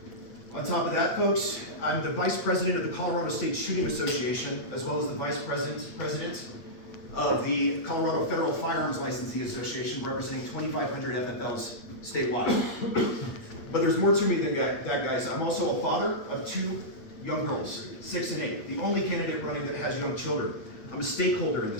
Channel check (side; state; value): right; late; 8.5 ms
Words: On top of that, folks, I'm the vice president of the Colorado State Shooting Association, as well as the vice president of the Colorado Federal Firearms Licensee Association, representing 2,500 FFLs statewide. But there's more to me than that, guys. I'm also a father of 2 young girls, 6 and 8, the only candidate running that has young children. I'm a stakeholder in